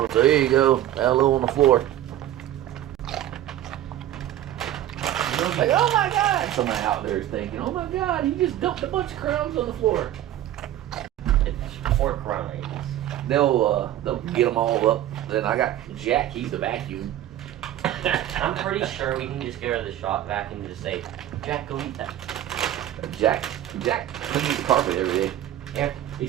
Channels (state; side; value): quieter; left; 12.6 dB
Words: So here you go. Hello on the floor. Like, oh my God. Somebody out there is thinking, oh my God, he just dumped a bunch of crumbs on the floor. It's 4 crumbs. They'll get them all up. Then I got Jack, he's the vacuum. I'm pretty sure we can just get rid of the shop vacuum and just say, Jack, go eat that. Jack cleans the carpet every day. Yeah. He